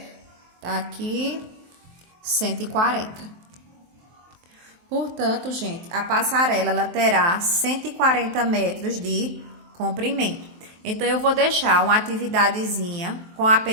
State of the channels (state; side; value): late; left; 23 ms